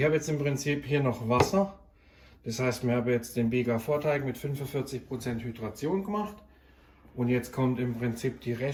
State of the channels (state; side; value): identical; both; correlation 1.00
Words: habe jetzt im Prinzip hier noch Wasser. Das heißt, wir haben jetzt den Bieger-Vorteig mit 45% Hydration gemacht. Und jetzt kommt im Prinzip die